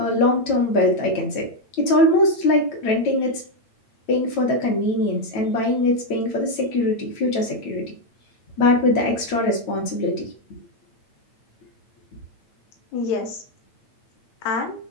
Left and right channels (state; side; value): late; right; 9.1 ms